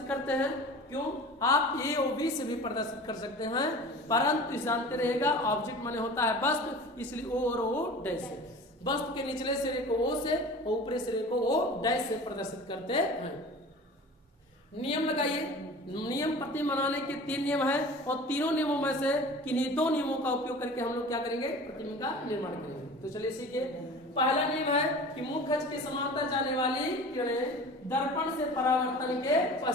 करते हैं। क्यों? आप ए और बी से भी प्रदर्शित कर सकते हैं, परंतु जानते रहेगा ऑब्जेक्ट माने होता है वस्तु, इसलिए ओ और ओ डैश से। वस्तु के निचले सिरे को ओ से और ऊपरी सिरे को ओ डैश से प्रदर्शित करते हैं। नियम लगाइए। नियम प्रतिबिंब बनाने के 3 नियम है, और तीनों नियमों में से किन्हीं 2 नियमों का उपयोग करके हम लोग क्या करेंगे? प्रतिबिंब का निर्माण करेंगे। तो चलिए सीखिए। पहला नियम है कि मुख्य अक्ष के समांतर जाने वाली किरणें दर्पण से परावर्तन के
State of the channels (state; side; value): normal; both; correlation 0.39